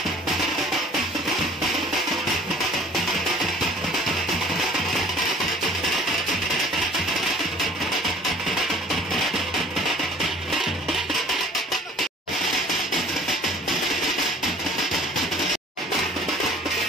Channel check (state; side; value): normal; both; correlation 0.50